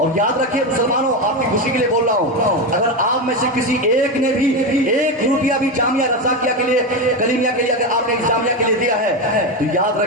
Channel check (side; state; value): both; normal; correlation 0.14